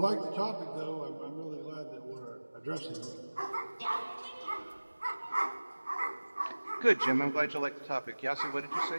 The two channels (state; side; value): inverted; both; correlation -1.00